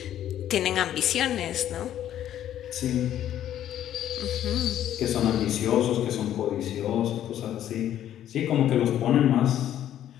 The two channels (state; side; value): quieter; right; 11.3 dB